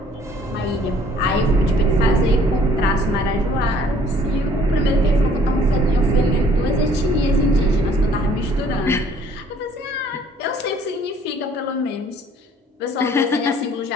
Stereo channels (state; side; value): normal; both; correlation 0.58